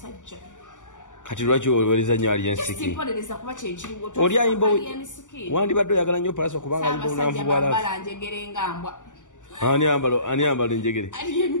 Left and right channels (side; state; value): right; late; 0.87 ms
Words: kati lwaki owolereza nnyo Alese kuba kyekiriwo oli ayimba wandibadde oyagala nnyo Palaso kubanga ayimba obunanfu bwa bala njegere ngambwa ani ambala enjegere